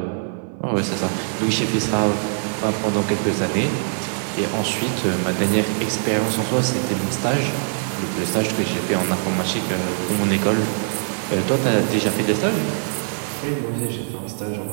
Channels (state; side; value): silent; left; 56 dB below the other